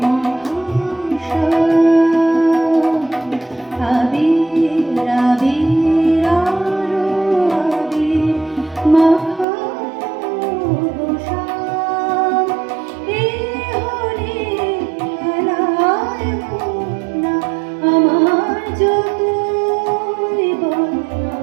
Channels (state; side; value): drops out; left; at 9.5 s